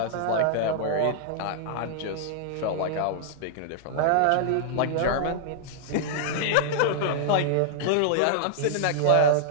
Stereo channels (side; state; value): both; different; correlation -0.01